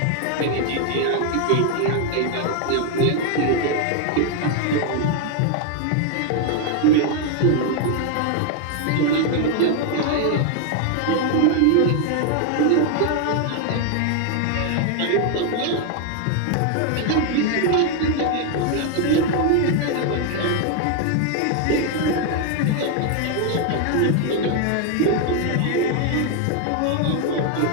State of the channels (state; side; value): different; both; correlation 0.00